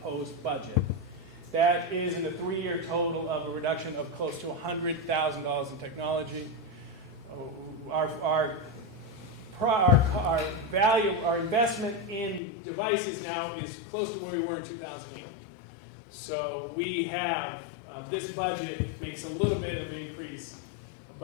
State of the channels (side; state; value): right; drops out; at 12.4 s